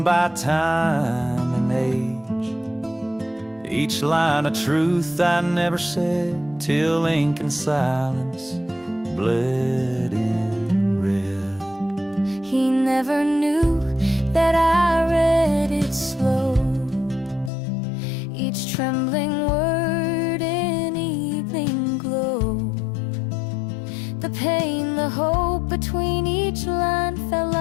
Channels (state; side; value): drops out; right; at 17.5 s